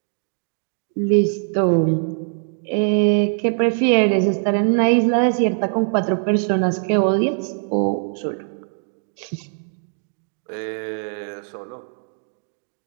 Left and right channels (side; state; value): left; silent; 65 dB below the other